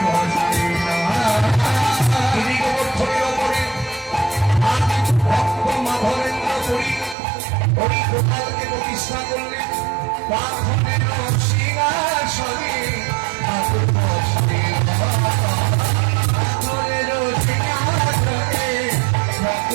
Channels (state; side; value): drops out; left; at 7.2 s